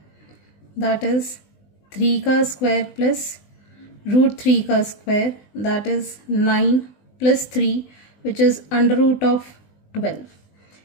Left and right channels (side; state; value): right; late; 20 ms